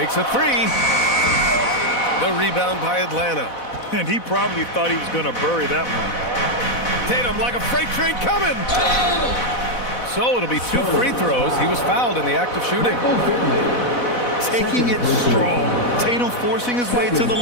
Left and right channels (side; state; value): right; late; 4.1 ms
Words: a 3. The rebound by Atlanta. And he probably thought he was going to bury that one. Tatum like a freight train coming. So it'll be 2 free throws. He was fouled in the act of shooting. Taking it strong. Tatum forcing his way to the